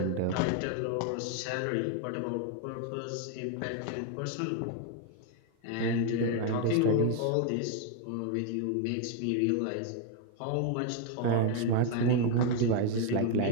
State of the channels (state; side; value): different; both; correlation 0.01